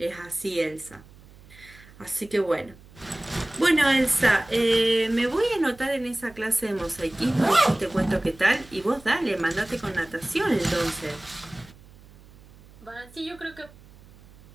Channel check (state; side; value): noise; right; hum, 23 dB below the sound